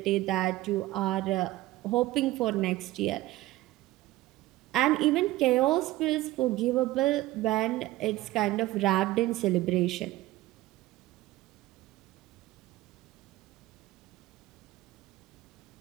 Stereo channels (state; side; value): quieter; left; 17.0 dB